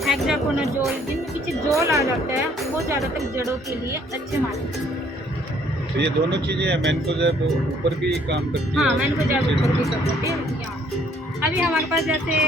हेक्साकोनाजोल जिनमें पीछे जोल आ जाता है वो ज़्यादातर जड़ों के लिए अच्छे मानते हैं। तो ये दोनों चीजें मैनकोजेब ऊपर भी काम करती है। हाँ, मैनकोजेब ऊपर भी कर सकते हैं यहाँ। अभी हमारे पास जैसे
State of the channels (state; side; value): normal; both; correlation 0.63